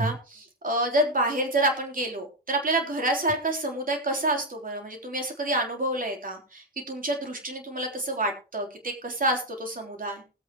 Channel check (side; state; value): both; normal; correlation 0.05